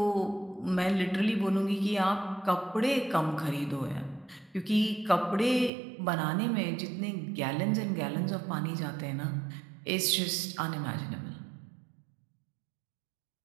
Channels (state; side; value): drops out; left; at 5.7 s